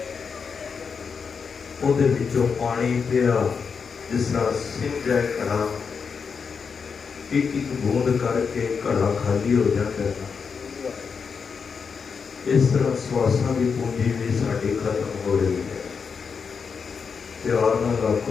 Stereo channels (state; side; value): quieter; right; 5.8 dB